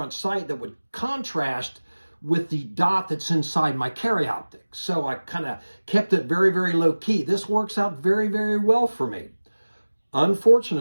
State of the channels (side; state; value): both; inverted; correlation -1.00